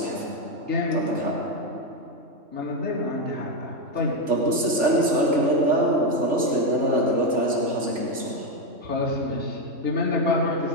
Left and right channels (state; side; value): late; left; 3.5 ms